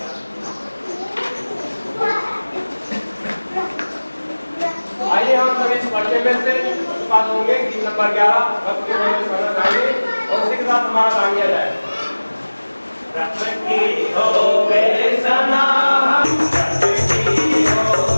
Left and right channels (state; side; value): inverted; both; correlation -1.00